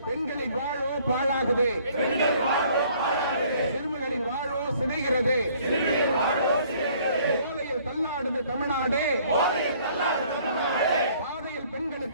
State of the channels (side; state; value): both; inverted; correlation -0.59